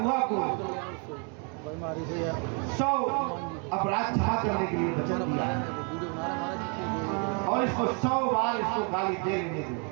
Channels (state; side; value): quieter; left; 37.4 dB